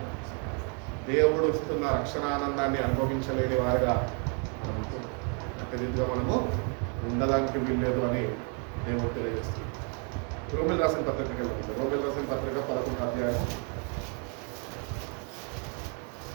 దేవుడు ఇస్తున్న రక్షణ ఆనందాన్ని అనుభవించలేని వారిగా మనం ప్రతినిధిగా మనము ఉండడానికి వీల్లేదు అని దేవుడు తెలియజేస్తుంది. రోమిల్ రాసిన పత్రిక, రోమిల్ రాసిన పత్రిక 11వ అధ్యాయం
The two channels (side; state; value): left; quieter; 38.1 dB